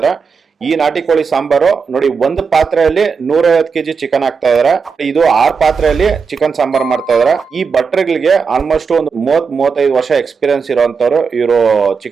ಈ ನಾಟಿ ಕೋಳಿ ಸಾಂಬಾರು ನೋಡಿ, ಒಂದು ಪಾತ್ರೆಯಲ್ಲಿ 150 kg ಚಿಕನ್ ಹಾಕ್ತಾ ಇದಾರೆ. ಇದು 6 ಪಾತ್ರೆಯಲ್ಲಿ ಚಿಕನ್ ಸಾಂಬಾರ್ ಮಾಡ್ತಾ ಇದಾರೆ. ಈ ಭಟ್ರುಗಳಿಗೆ ಆಲ್ಮೋಸ್ಟ್ ಒಂದು 30-35 ವರ್ಷ ಎಕ್ಸ್ಪೀರಿಯನ್ಸ್ ಇರುವಂತವ್ರು ಇವರು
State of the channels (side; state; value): left; quieter; 5.5 dB